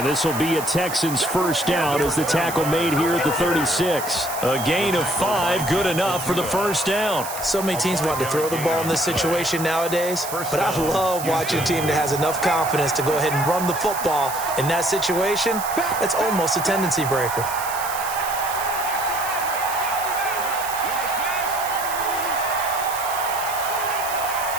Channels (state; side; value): noise; right; hiss, 9 dB below the sound